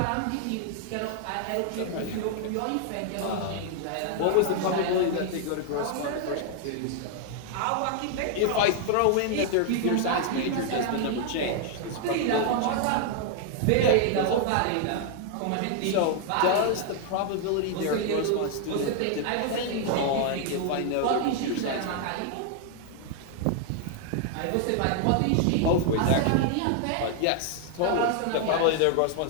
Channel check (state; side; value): different; both; correlation 0.00